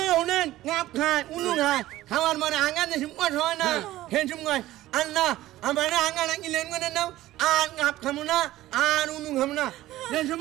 হুনেন গাপ খায় উনু খায় খাওয়ার মানে আঙ্গা দেশম কত হয় না হেসম কয় আল্লাহ আমার আঙ্গা নাকি লেন করে নাও আর গাপ খামু না আর উনু খামু না দেশম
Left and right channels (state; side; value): quieter; left; 15.6 dB